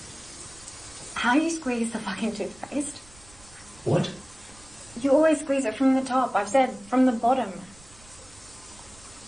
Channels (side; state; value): right; noise; rumble, 25 dB below the sound